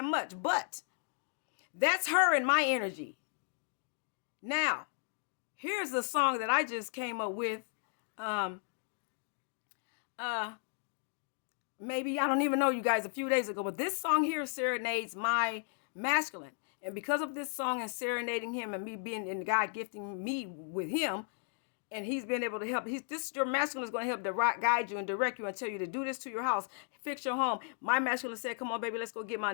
much. But that's her and my energy. Now, here's a song that I just came up with. Maybe, I don't even know, you guys, a few days ago. But this song here serenades my masculine. And because of this song and serenading him, and me being, and God gifting me with him, and he's been able to help. Your masculine is going to help guide you and direct you and tell you to do this to your house, fix your home. My masculine said, "Come on, baby, let's go get my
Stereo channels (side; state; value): right; silent; 54 dB below the other